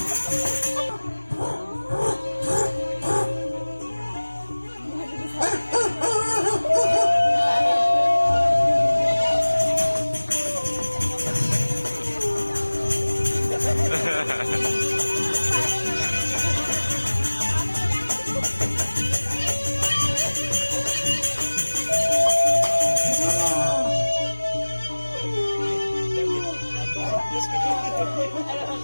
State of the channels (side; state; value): both; inverted; correlation -1.00